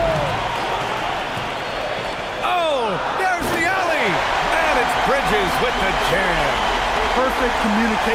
Oh, there's the alley. And it's Bridges with the jam. Perfect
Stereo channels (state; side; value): identical; both; correlation 1.00